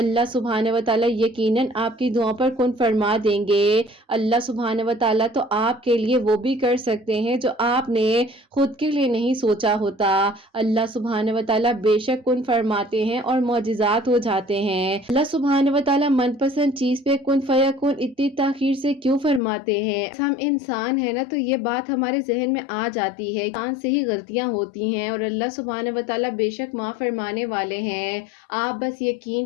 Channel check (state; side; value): drops out; right; at 19.4 s